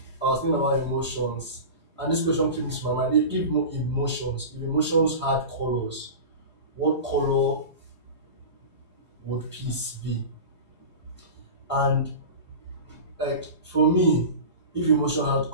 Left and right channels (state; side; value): late; right; 4.8 ms